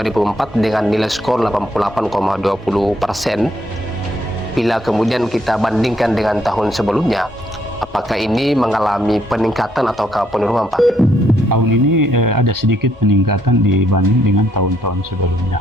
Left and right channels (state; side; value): normal; both; correlation 0.72